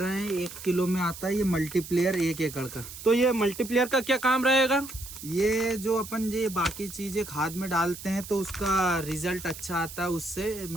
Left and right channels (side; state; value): right; noise; hiss, 13 dB below the sound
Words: हैं 1 किलो में आता है ये मल्टीप्लेयर 1 एकड़ का। तो ये मल्टीप्लेयर का क्या काम रहेगा। ये जो अपन ये बाकी चीजें खाद में डालते हैं तो उसका रिजल्ट अच्छा आता है उससे,